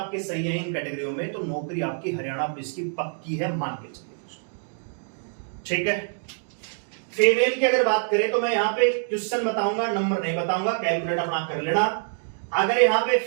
सही है इन कैटेगरियों में, तो नौकरी आपकी हरियाणा पुलिस की पक्की है, मान के चलिए, ठीक है। फीमेल की अगर बात करें तो मैं यहां पे क्वेश्चन बताऊंगा, नंबर नहीं बताऊंगा, कैलकुलेट अपना कर लेना। अगर यहां पे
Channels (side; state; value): left; silent; 61 dB below the other